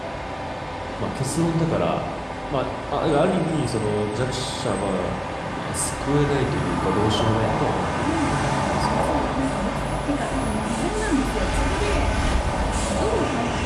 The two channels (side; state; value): both; identical; correlation 1.00